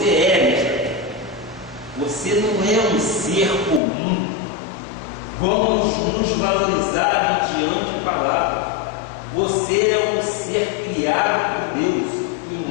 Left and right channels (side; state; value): right; drops out; at 3.8 s